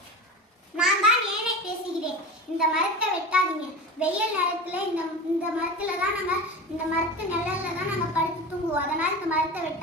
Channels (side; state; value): both; normal; correlation 0.29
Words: நான் தான் ஏனே பேசுகிறேன். இந்த மரத்தை வெட்டாதீங்க. வெயில் நேரத்துல இந்த மரத்துல தான் இந்த மரத்து நிழல்ல தான் நாங்க படுத்து தூங்குவோம். அதனால இந்த மரத்தை